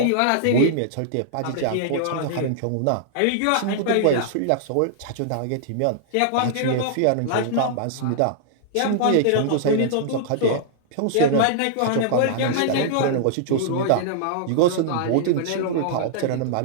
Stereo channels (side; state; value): both; different; correlation -0.01